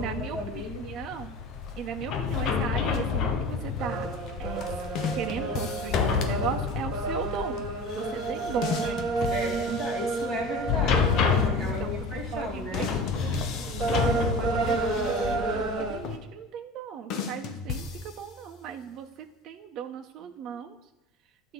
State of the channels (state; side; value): normal; both; correlation 0.35